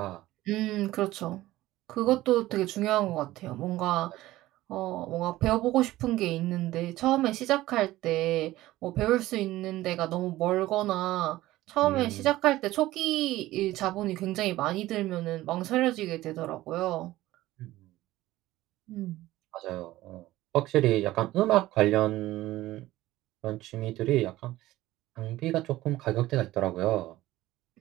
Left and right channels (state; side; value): quieter; left; 16.4 dB